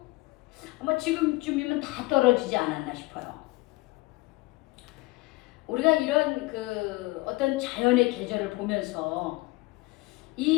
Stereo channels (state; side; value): quieter; right; 22.4 dB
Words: 아마 지금쯤이면 다 떨어지지 않았나 싶어요. 우리가 이런 어떤 자연의 계절을 보면서